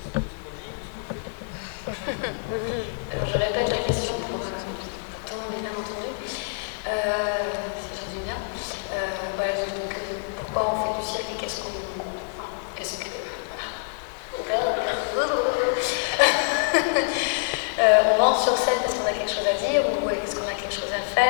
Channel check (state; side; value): silent; right; digital silence